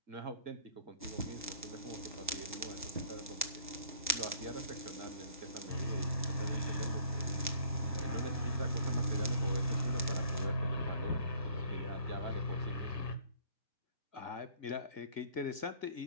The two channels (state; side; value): inverted; both; correlation -0.57